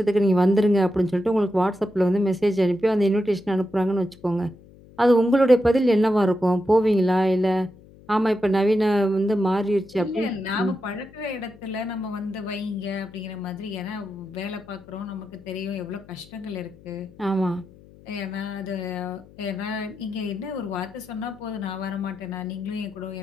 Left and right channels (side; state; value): left; noise; hum, 23 dB below the sound